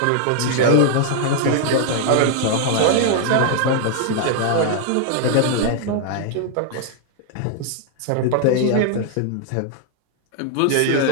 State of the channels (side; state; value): both; different; correlation 0.00